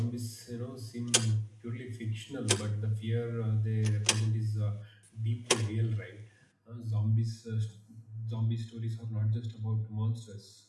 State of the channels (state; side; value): identical; both; correlation 1.00